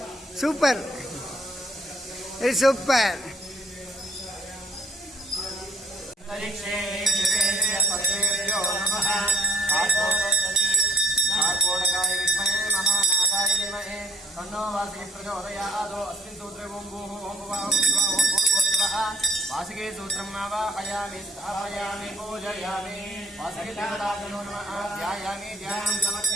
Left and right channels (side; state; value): both; normal; correlation 0.59